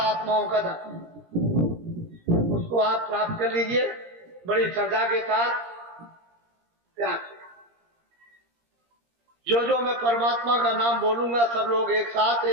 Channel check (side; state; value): left; late; 17 ms